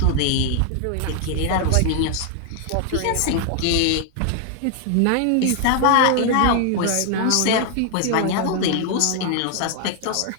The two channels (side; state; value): both; different; correlation 0.00